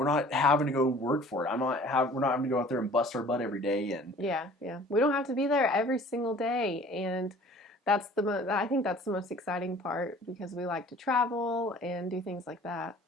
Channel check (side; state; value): both; normal; correlation 0.49